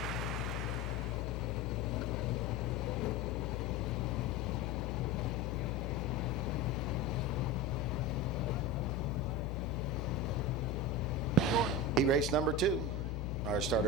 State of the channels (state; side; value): noise; left; hum, 1 dB below the sound